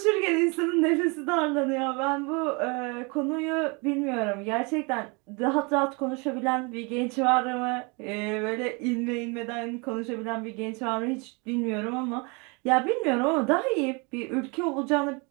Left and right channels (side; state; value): left; quieter; 30.2 dB